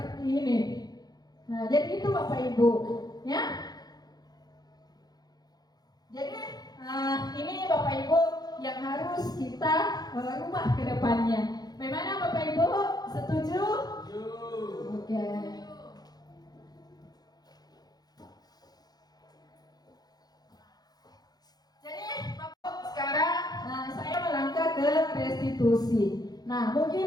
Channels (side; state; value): right; late; 0.19 ms